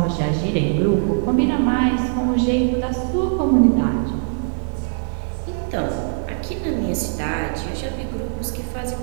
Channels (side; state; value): left; silent; 65 dB below the other